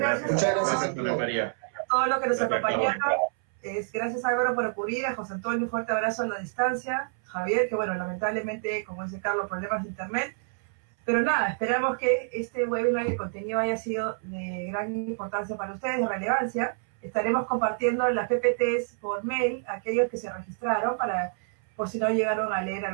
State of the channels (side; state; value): left; silent; 59 dB below the other